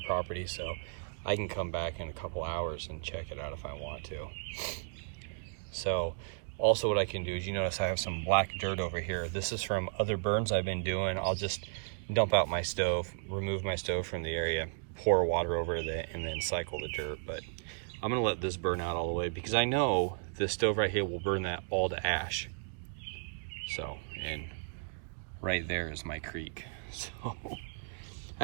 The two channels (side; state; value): left; silent; digital silence